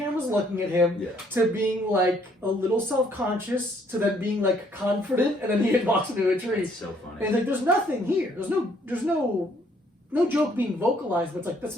looking at him, Yeah. to being like a little self-conscious, to then being like confident, and then he walks into a tree. It's so And funny. it's like there's nothing here. There's no joke being vocalized, but it's like that's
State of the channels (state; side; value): normal; both; correlation 0.65